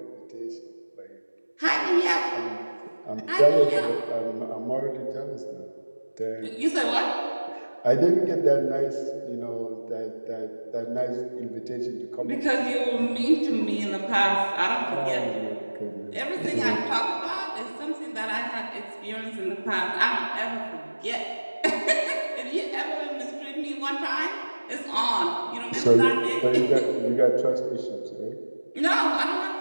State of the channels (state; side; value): inverted; both; correlation -1.00